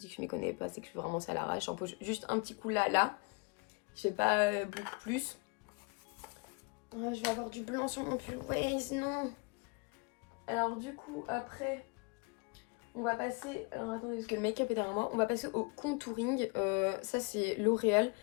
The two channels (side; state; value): right; quieter; 30.2 dB